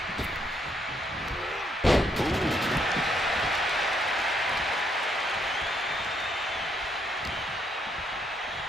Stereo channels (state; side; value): normal; both; correlation 0.73